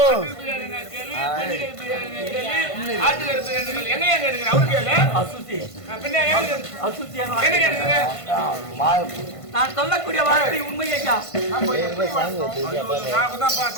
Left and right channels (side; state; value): right; late; 1.5 ms